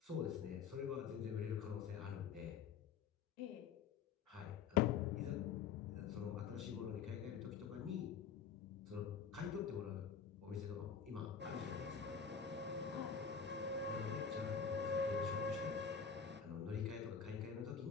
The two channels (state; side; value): quieter; right; 6.8 dB